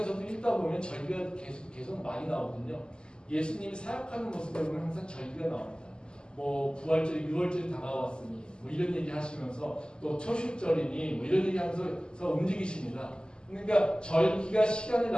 읽다 보면 절기가 계속 많이 나오거든요. 예수님이 사역하는 모습을 보면 항상 절기가 나옵니다. 부활절이 6월절이 다가왔으니 이런 얘기 하시면서, 또 초실절이니 이런 얘기 하면서 움직이십니다. 그러니까 절기가 시간을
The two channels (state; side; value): late; right; 0.048 ms